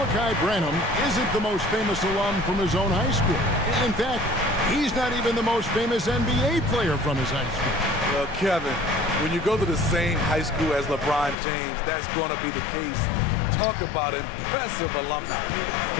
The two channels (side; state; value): right; drops out; at 11.4 s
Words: Branham isn't the most famous alum from his own high school. In fact, he's not even the most famous NBA player from his high school. Well, Kevin, when you go to the same high school as LeBron James, that's going to be the case. Talk about impressive alumni.